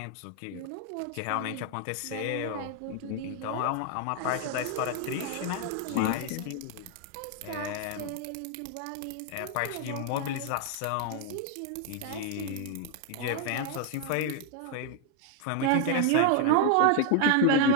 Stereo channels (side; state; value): both; different; correlation 0.00